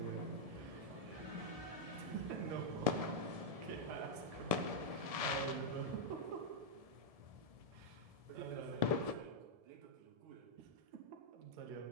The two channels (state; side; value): late; left; 1.7 ms